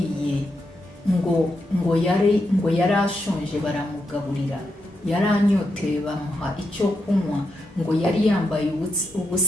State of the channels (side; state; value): both; normal; correlation 0.84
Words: ngo yari ashonje baramugaburira, yari anyoteye bamuha icyo kunywa, ngo yari yambaye